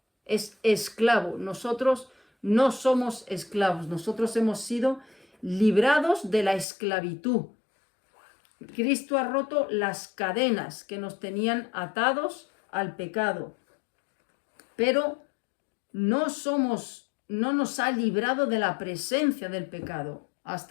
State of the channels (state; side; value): drops out; right; at 6.7 s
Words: Es esclavo. Nosotros no somos esclavos. Nosotros hemos sido librados de la esclavitud. Cristo ha roto las cadenas que nos tenían atados al pecado. Pero no nos ha librado de la presencia del pecado.